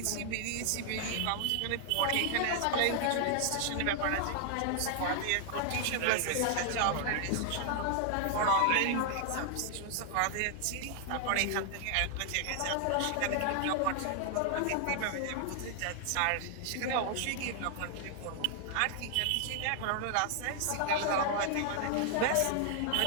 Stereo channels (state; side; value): different; both; correlation 0.00